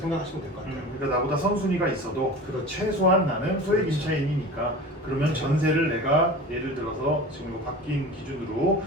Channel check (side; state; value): both; normal; correlation 0.35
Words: 될 것 같아요. 그러니까 나보다 선순위가 있어도 그렇죠. 최소한 나는 소액 그렇죠. 임차인이니까 그러면 전세를 내가 예를 들어서 지금 이거 바뀐 기준으로